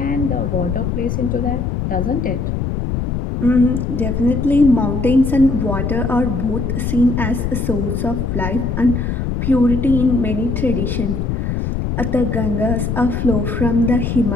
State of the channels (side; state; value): left; noise; rumble, 2 dB below the sound